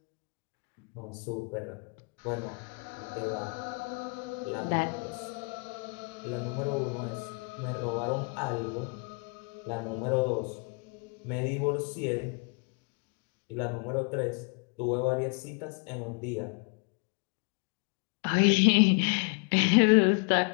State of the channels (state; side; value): quieter; right; 36.0 dB